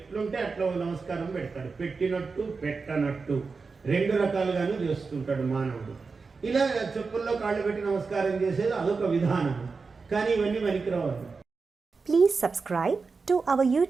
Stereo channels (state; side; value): quieter; left; 4.6 dB